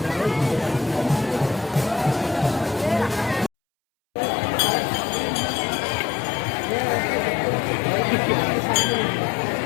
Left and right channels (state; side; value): drops out; right; at 3.5 s